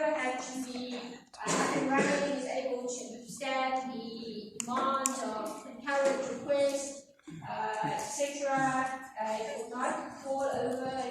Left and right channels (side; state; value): both; identical; correlation 1.00